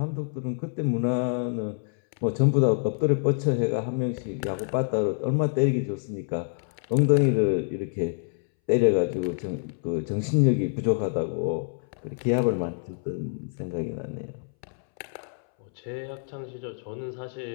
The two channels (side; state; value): right; silent; 60 dB below the other